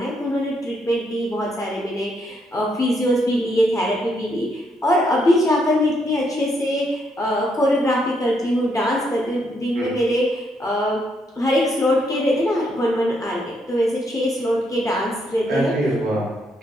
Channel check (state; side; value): normal; both; correlation 0.75